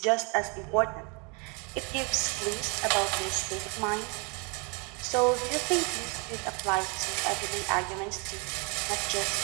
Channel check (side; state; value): left; quieter; 32.9 dB